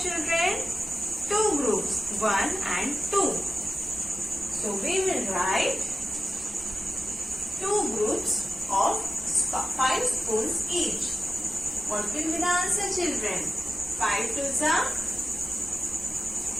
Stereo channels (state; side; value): normal; both; correlation 0.96